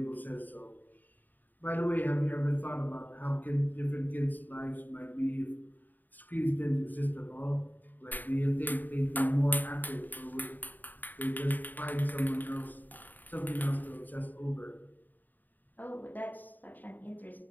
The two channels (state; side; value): late; right; 0.087 ms